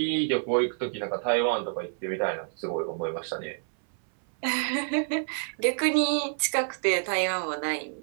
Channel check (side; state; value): left; silent; 58 dB below the other